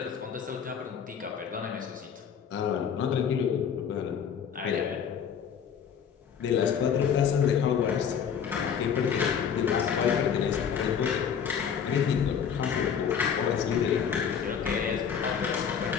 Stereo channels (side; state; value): right; quieter; 7.6 dB